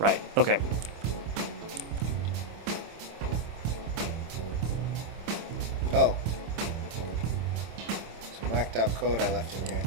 Okay. Oh. Some whacked out code I left in here.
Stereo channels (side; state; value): left; late; 26 ms